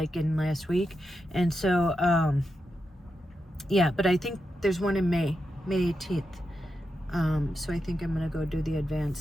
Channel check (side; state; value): both; normal; correlation 0.87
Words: in last week. And so, yeah, but I think there's one in May 18th. So I think I'm going to go do the